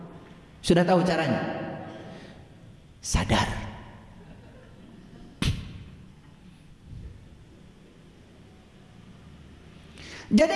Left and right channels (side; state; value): both; identical; correlation 1.00